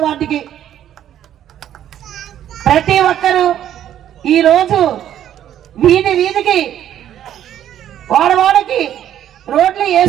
వార్డుకి. ప్రతి ఒక్కరూ ఈ రోజు వీధికి వాడవాడకి రోడ్లు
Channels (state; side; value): quieter; left; 10.9 dB